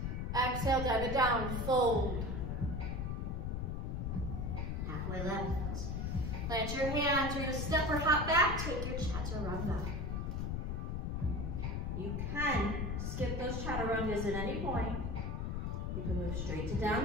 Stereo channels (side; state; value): left; noise; rumble, 2 dB below the sound